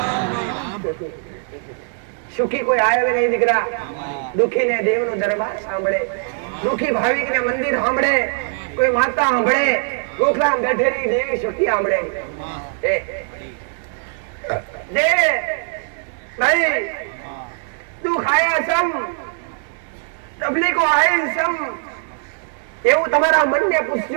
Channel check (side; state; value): left; silent; 58 dB below the other